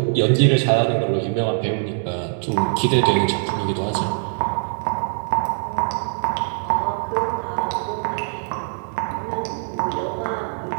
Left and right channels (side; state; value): left; silent; 64 dB below the other